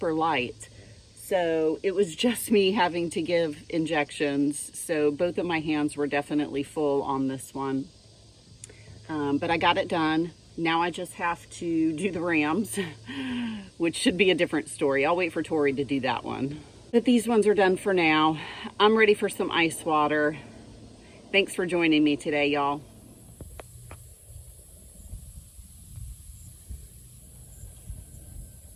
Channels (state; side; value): identical; both; correlation 1.00